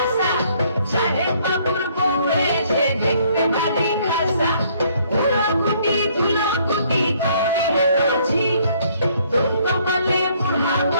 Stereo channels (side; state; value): both; inverted; correlation -0.64